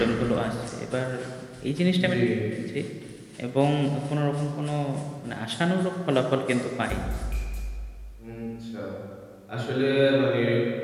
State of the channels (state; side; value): identical; both; correlation 1.00